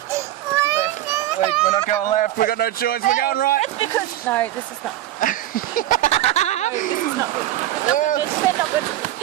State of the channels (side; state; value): left; quieter; 13.8 dB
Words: Wait, we're not going left. We've got no choice. We're going right. It's because no, this is not. No, this is not good.